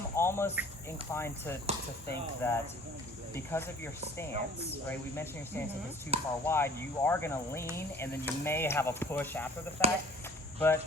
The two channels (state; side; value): normal; both; correlation 0.50